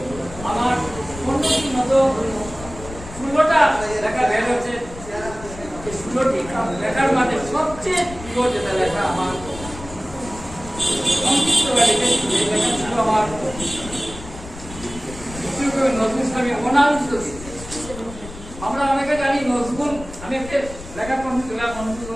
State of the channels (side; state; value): left; noise; rumble, 14 dB below the sound